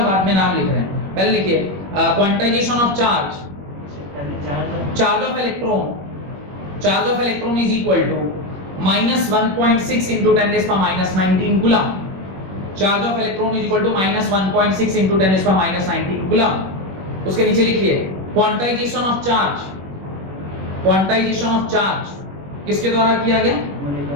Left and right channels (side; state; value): left; late; 21 ms